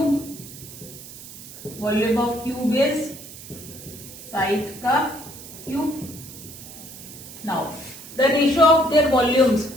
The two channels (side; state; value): right; noise; hiss, 15 dB below the sound